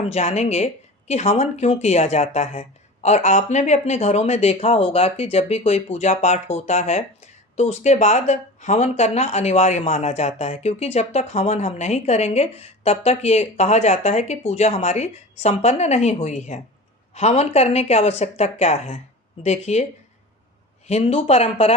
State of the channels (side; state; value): both; normal; correlation 0.34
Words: जानेंगे कि हवन क्यों किया जाता है। और आपने भी अपने घरों में देखा होगा कि जब भी कोई पूजा पाठ होता है तो उसके बाद हवन करना अनिवार्य माना जाता है, क्योंकि जब तक हवन हम नहीं करेंगे तब तक ये कहा जाता है कि पूजा हमारी संपन्न नहीं हुई है। हवन करने की आवश्यकता क्या है? देखिए, हिंदू